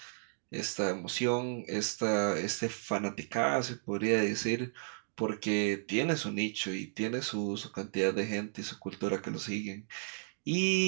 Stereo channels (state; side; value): silent; left; digital silence